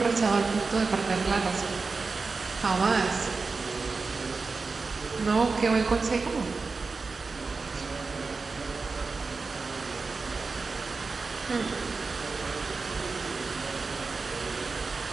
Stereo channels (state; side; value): quieter; left; 4.2 dB